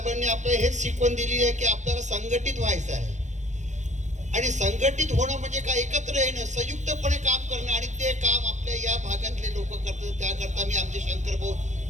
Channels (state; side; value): late; left; 0.35 ms